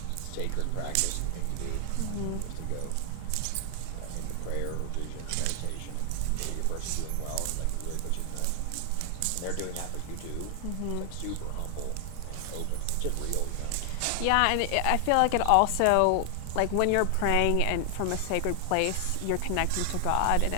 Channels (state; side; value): different; both; correlation 0.00